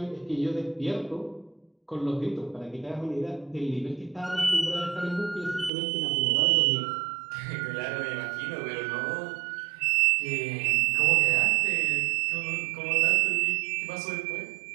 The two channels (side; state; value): left; drops out; at 5.7 s